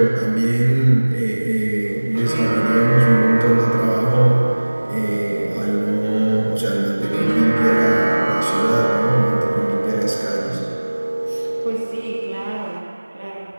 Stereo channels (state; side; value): inverted; both; correlation -1.00